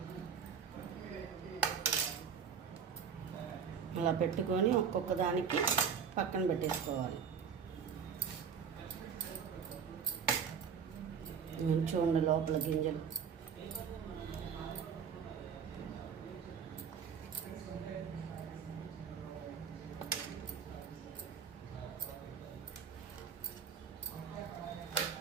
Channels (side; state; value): left; quieter; 6.9 dB